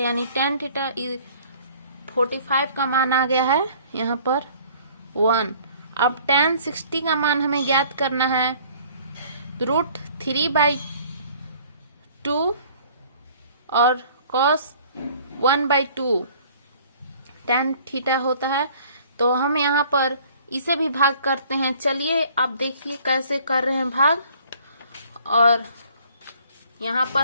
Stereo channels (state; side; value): inverted; both; correlation -0.54